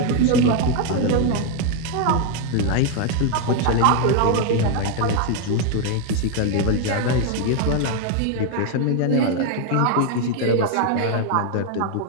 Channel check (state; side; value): different; both; correlation 0.01